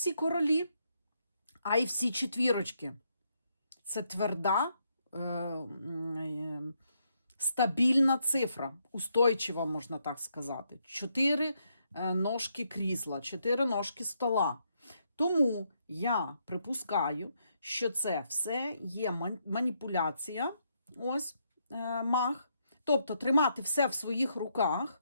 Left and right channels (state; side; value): inverted; both; correlation -0.77